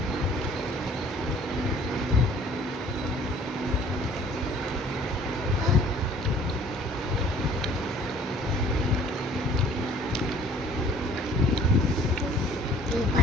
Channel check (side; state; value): both; normal; correlation 0.53